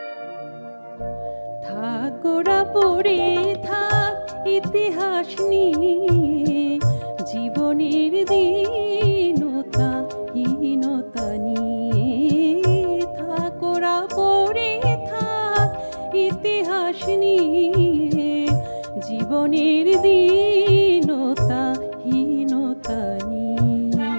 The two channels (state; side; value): inverted; both; correlation -1.00